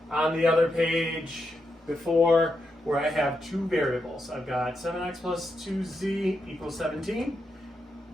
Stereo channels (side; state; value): both; normal; correlation 0.84